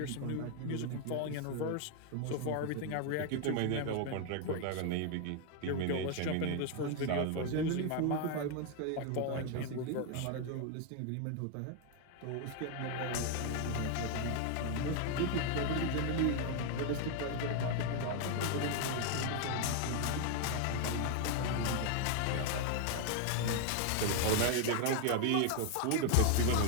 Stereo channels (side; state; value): both; different; correlation 0.00